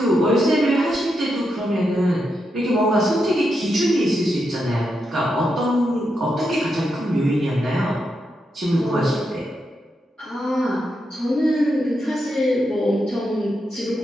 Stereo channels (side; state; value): both; normal; correlation 0.84